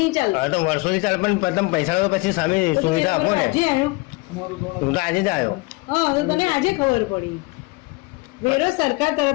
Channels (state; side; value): quieter; right; 24.1 dB